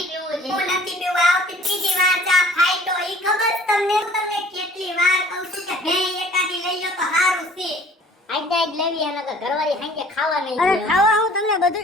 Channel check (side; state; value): both; normal; correlation 0.52